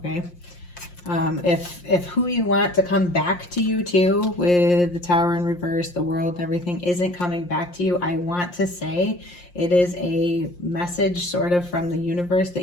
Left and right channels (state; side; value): late; right; 5.7 ms